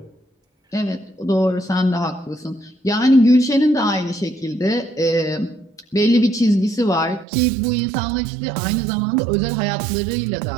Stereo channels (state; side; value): drops out; left; at 7.2 s